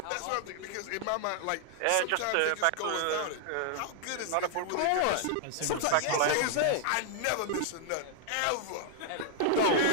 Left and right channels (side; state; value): both; different; correlation 0.00